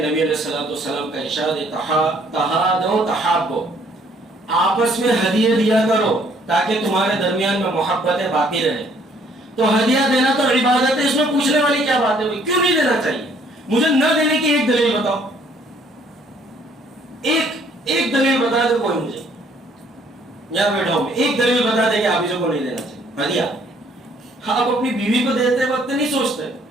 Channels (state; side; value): normal; both; correlation 0.62